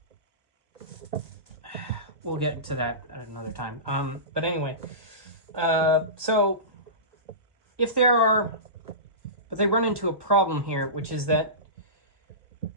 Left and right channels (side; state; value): left; late; 1.1 ms